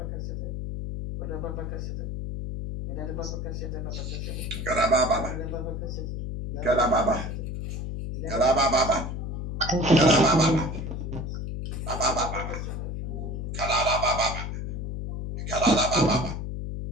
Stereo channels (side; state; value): left; noise; hum, 4 dB below the sound